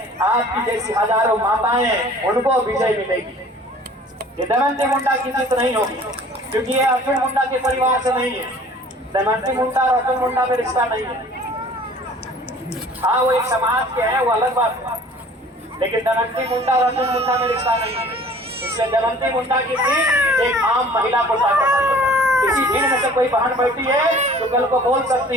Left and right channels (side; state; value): both; normal; correlation 0.49